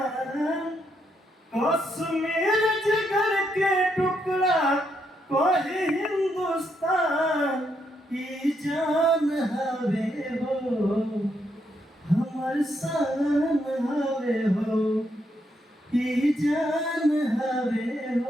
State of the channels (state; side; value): normal; both; correlation 0.78